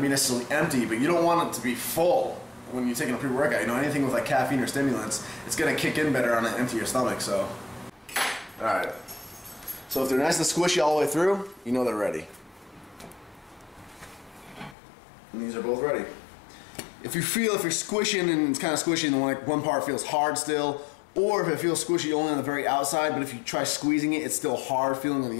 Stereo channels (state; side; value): drops out; right; at 14.8 s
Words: to be necessarily empty, but you don't want it to be full when you're taking a pre-workout. You know, anything with like caffeine or stimulants, it's going to kick in better on an empty stomach. So, all right. So if they're nice and squishy all the way through, you know they're ready. And these are both ready. If you're squishing and it's kind of squishy and one part feels hard still, or if it feels squishy only on the very outside, but if you try squeezing it, it's still hard feeling on